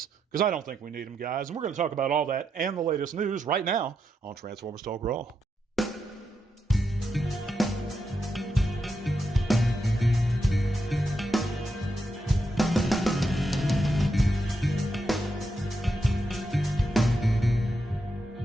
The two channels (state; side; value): normal; both; correlation 0.84